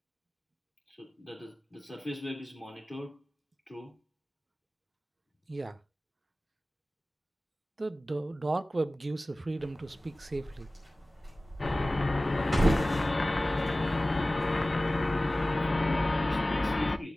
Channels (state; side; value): normal; both; correlation 0.97